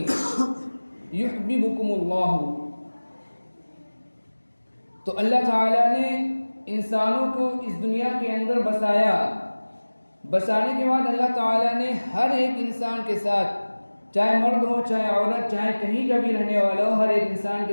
یحببکم اللہ، تو اللہ تعالیٰ نے انسانوں کو اس دنیا کے اندر بسایا، بسانے کے بعد اللہ تعالیٰ نے ہر ایک انسان کے ساتھ، چاہے مرد ہو چاہے عورت، چاہے کہیں کا بھی رہنے والا ہو، ہر ایک انسان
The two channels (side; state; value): both; inverted; correlation -1.00